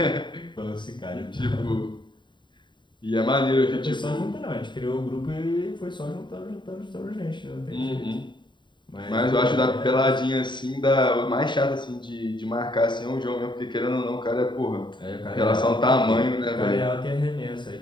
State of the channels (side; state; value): right; late; 0.23 ms